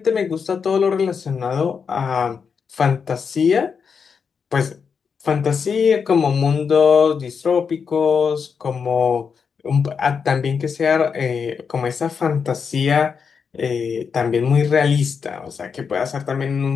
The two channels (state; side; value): quieter; right; 6.1 dB